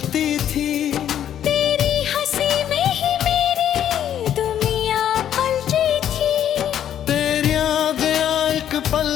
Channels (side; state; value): right; quieter; 10.3 dB